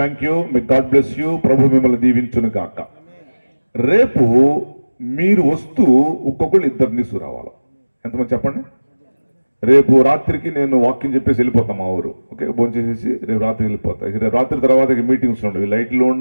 యూ, మీ గాడ్ బ్లెస్ యూ, ప్రభు మిమ్మల్ని దీవించును గాక. రేపు మీరు వస్తూ ఒక్కొక్కళ్ళు 2 తీసుకురావాలి. ఎంతమంది చెప్పండి. రేపు రాత్రికి నేను వాక్యం చెప్పేసి వెళ్ళిపోతాం మా ఊరు. ఓకే, భోంచేసేసి రేపు రాత్రి వెళ్ళిపోతా. రేపు రాత్రి తర్వాత మీటింగ్స్ ఉండవు, లైట్లు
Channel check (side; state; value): both; inverted; correlation -1.00